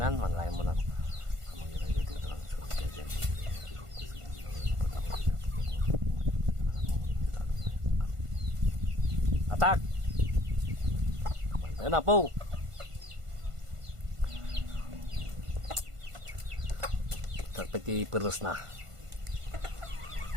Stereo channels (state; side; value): late; left; 1.5 ms